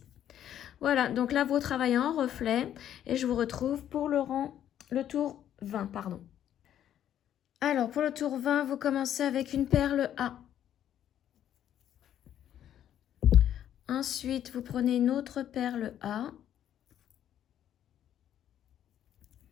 Voilà, donc là, vous travaillez en reflet et je vous retrouve pour le tour 20, pardon. Alors, pour le tour 20, vous commencez avec une perle A. Ensuite, vous prenez une autre perle A.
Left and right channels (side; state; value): right; quieter; 10.7 dB